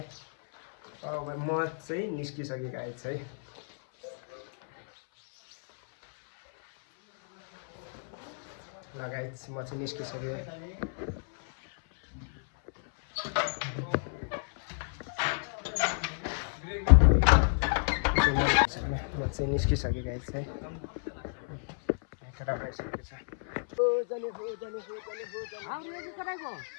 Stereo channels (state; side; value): silent; right; 57 dB below the other